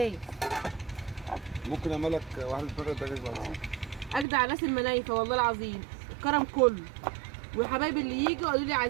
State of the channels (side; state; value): left; drops out; at 4.2 s